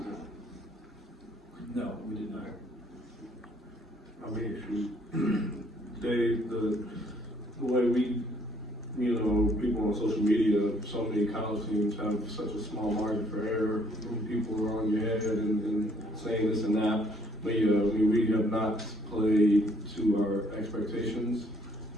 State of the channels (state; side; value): normal; both; correlation 0.65